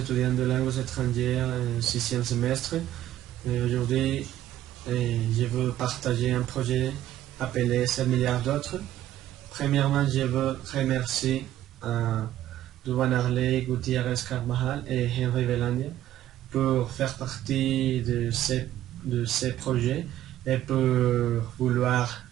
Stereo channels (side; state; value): left; quieter; 13.1 dB